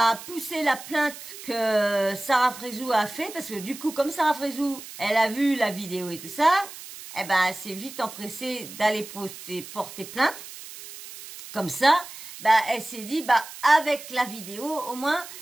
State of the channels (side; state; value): right; noise; hiss, 14 dB below the sound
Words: pousser la plainte que Sarah Frézou a fait, parce que du coup, comme Sarah Frézou, elle a vu la vidéo et tout ça, eh ben, elle s'est vite empressée d'aller porter plainte. Comme ça, elle s'est dit, avec la vidéo, au moins,